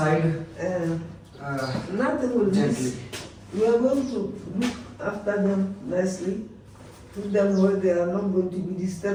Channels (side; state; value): both; identical; correlation 1.00